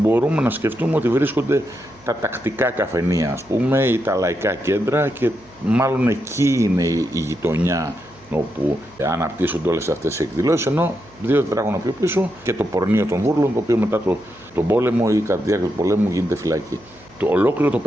να σκεφτούμε ότι βρίσκονται τα τακτικά καφενεία, ας πούμε, ή τα λαϊκά κέντρα, και μάλλον εκεί είναι η γειτονιά όπου αναπτύσσονται όλες αυτές οι εκδηλώσεις, ενώ 2 τετράγωνα πιο πίσω και το πορνείο των Βούρλων, το οποίο μετά τον πόλεμο ή κατά τη διάρκεια του πολέμου γίνεται φυλακή. Ολόκληρο το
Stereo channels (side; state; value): right; noise; hum, 28 dB below the sound